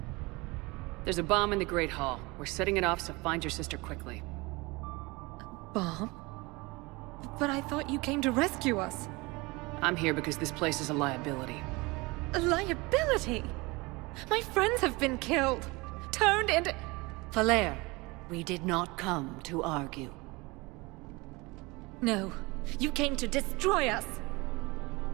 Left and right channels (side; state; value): left; quieter; 24.3 dB